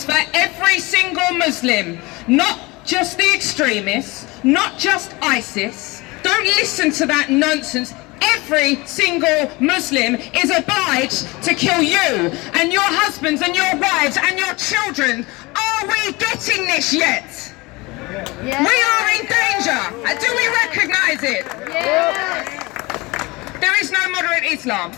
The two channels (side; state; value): right; quieter; 23.6 dB